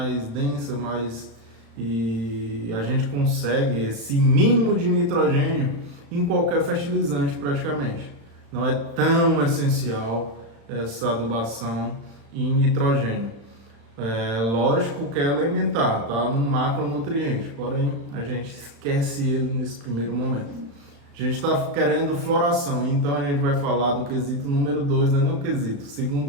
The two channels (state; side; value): late; left; 35 ms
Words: densa, e a gente consegue esse mínimo de nitrogênio em qualquer fertilizante praticamente. Não é tão essencial essa adubação em nitrogênio. Lógico que é elementar, tá? No macronutriente, porém a gente esquece ele nesse primeiro momento. A gente está querendo floração, então a gente vai falar do quesito número 2, não é nem o quesito,